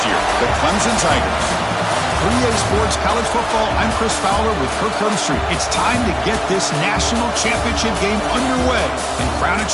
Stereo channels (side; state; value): both; identical; correlation 1.00